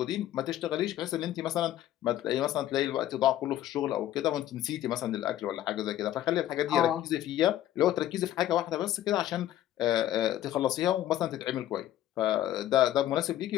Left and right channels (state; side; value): quieter; right; 12.9 dB